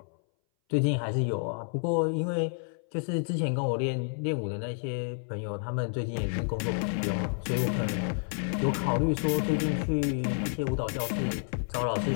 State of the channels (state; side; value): silent; right; 58 dB below the other